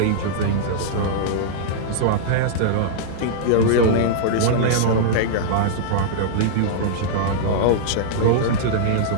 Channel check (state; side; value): different; both; correlation -0.02